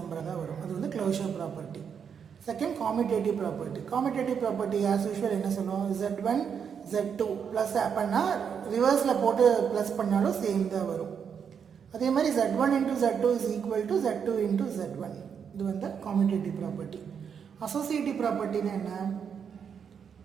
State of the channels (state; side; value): quieter; left; 7.2 dB